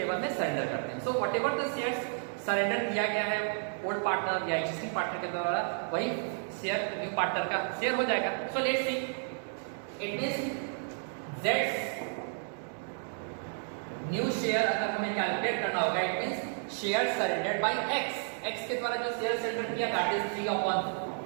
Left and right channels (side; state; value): left; silent; 56 dB below the other